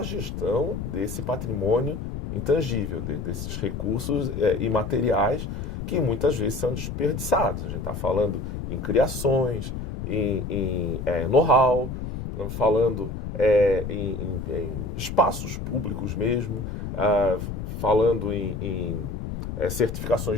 gestão desse patrimônio intangível, desses recursos imateriais que muitas vezes são desperdiçados. A gente está falando em criações, em know-how, falando em espaços públicos mesmo, falando em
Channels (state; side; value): noise; left; rumble, 6 dB below the sound